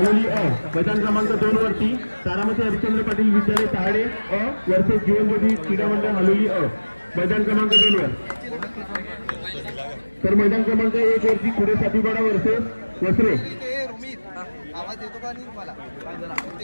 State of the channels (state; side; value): inverted; both; correlation -1.00